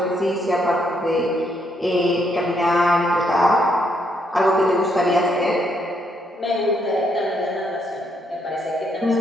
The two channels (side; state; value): both; normal; correlation 0.74